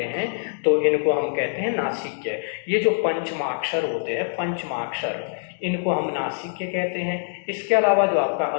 हैं, तो इनको हम कहते हैं नासिक्य। ये जो पंचमाक्षर होते हैं, पंचमाक्षर, इनको हम नासिक्य कहते हैं। इसके अलावा जो आपका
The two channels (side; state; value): right; silent; digital silence